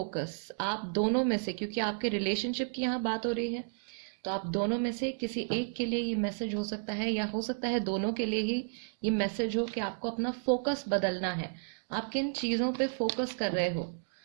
आप दोनों में से, क्योंकि आपके रिलेशनशिप की यहाँ बात हो रही है, तो आप दोनों में से किसी एक के लिए ये मैसेज हो सकता है या हो सकता है दोनों के लिए ही ये मैसेज हो कि आपको अपना फोकस बदलना है। आप किन चीज़ों पे फोकस कर रहे हो,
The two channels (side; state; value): left; silent; digital silence